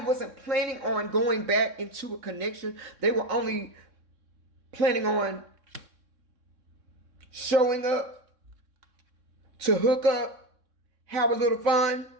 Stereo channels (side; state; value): left; late; 3.6 ms